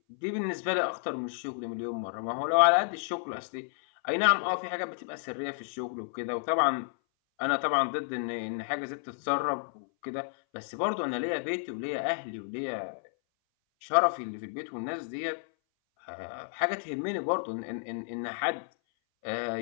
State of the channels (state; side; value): silent; right; 57 dB below the other